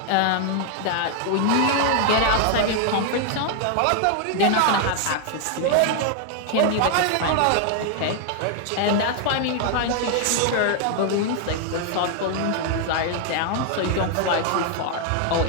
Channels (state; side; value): different; both; correlation 0.00